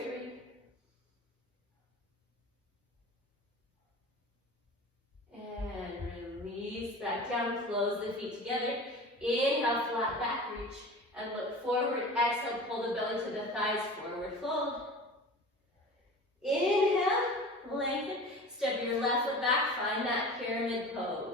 three. And release back down, close the feet together. Inhale, flat back reach. And look forward, exhale, pull the belly to the thighs, forward fold. Inhale, lengthen. Step your left foot back, find that pyramid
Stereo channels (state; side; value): normal; both; correlation 0.37